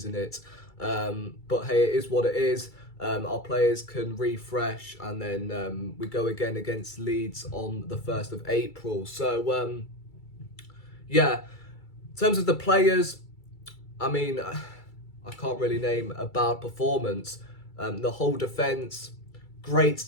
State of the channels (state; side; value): late; right; 2.3 ms